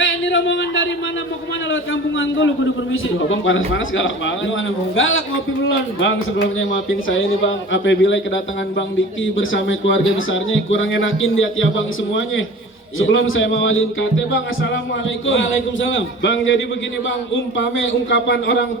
rombongan dari mana mau kemana lewat kampungan gue, lu kudu permisi. Abang panas-panas galak banget. Gimana mau galak ngopi belum? Bang, sebelumnya maafin saya nih bang, apabila kedatangan Bang Diki bersama keluarga besarnya kurang enakin di hati abang semuanya. Sebelum saya mawalin kate bang, assalamualaikum. Waalaikumsalam. Bang, jadi begini bang, umpame ungkapan orang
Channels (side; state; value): both; normal; correlation 0.40